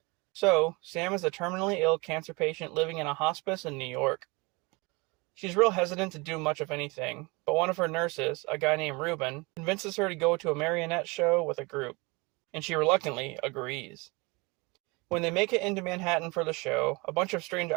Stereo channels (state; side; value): quieter; left; 26.5 dB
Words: So, Sam is a terminally ill cancer patient living in a hospice in New York. She's real hesitant to do much of anything, but one of her nurses, a guy named Ruben, convinces her to go to a marionette show with a group, and she reluctantly agrees. When they make it into Manhattan for the show, a bunch of strange